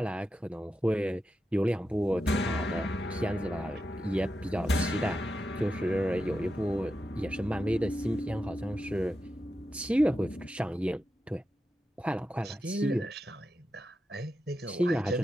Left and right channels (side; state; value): both; normal; correlation 0.89